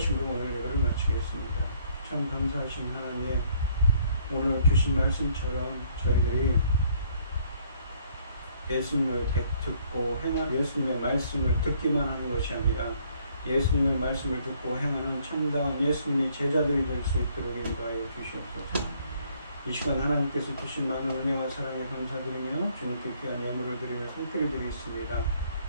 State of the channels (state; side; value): inverted; both; correlation -0.65